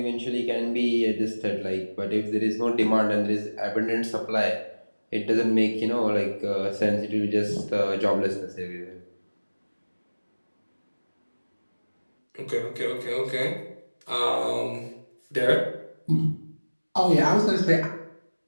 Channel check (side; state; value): both; inverted; correlation -1.00